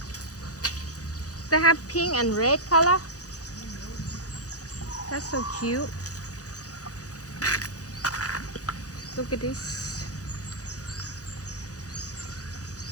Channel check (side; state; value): right; late; 0.67 ms